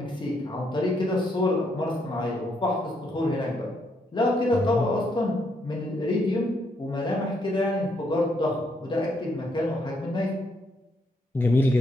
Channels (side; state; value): both; normal; correlation 0.75